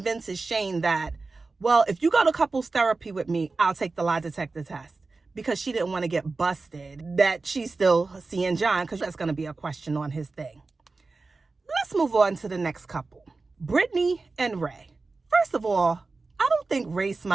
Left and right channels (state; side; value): quieter; left; 3.8 dB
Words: Shane that, well, if you go to couples therapy with me, I'll take the lie detector test, because she didn't want to get busted that she's still seeing John, because that's going to be a question on his thing. Let's move on to the next couple, Brittany and Ray. First of all, I don't think Ray